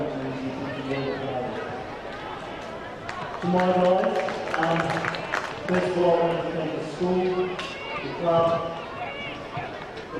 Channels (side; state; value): both; identical; correlation 1.00